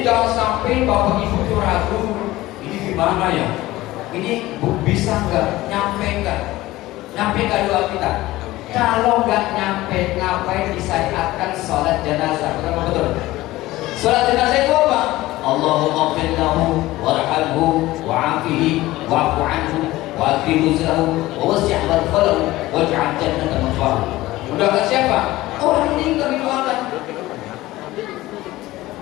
jangan sampai Bapak Ibu itu ragu, ini gimana ya? Ini bisa nggak? Nyampe nggak doa kita? Kalau nggak nyampe, ngapain disyariatkan sholat jenazah? Betul. Sholat jenazah itu apa? Allahumma ighfir lahu warhamhu wa'afihi wa'fu anhu wa'akrim nuzlahu wa wasi' madkhalahu waj'al jannata mathwahu. Mendoakan siapa? Orang meninggal didoakan.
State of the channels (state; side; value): quieter; right; 17.6 dB